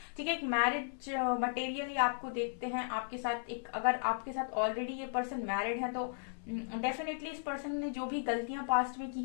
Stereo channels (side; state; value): right; silent; 54 dB below the other